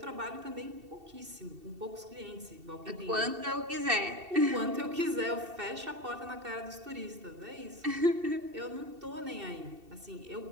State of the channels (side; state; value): left; late; 2.7 ms